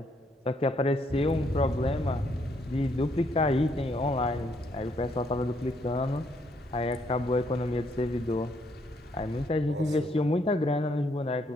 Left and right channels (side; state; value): both; normal; correlation 0.71